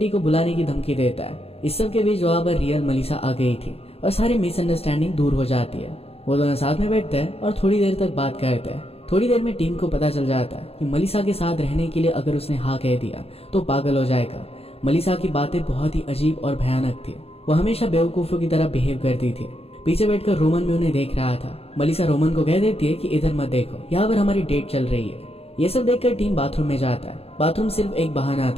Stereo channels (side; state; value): right; late; 0.29 ms